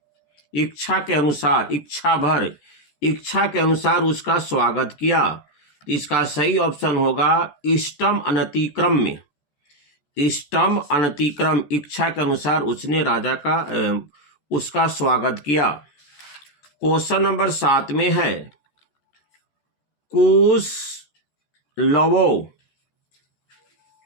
इच्छा के अनुसार, इच्छा भर, इच्छा के अनुसार उसका स्वागत किया। इसका सही ऑप्शन होगा इष्टम अनतिक्रम्य, इष्टम अनतिक्रम, इच्छा के अनुसार उसने राजा का उसका स्वागत किया। क्वेश्चन नंबर 7 में है कुश लवो,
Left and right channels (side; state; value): right; late; 14 ms